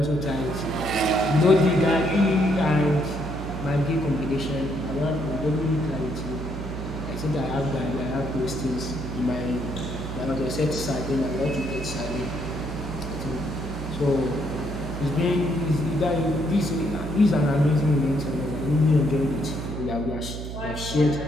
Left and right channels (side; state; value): right; noise; hum, 7 dB below the sound